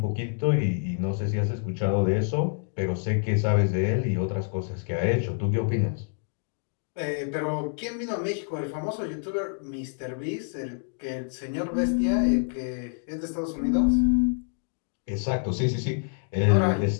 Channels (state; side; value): silent; right; 58 dB below the other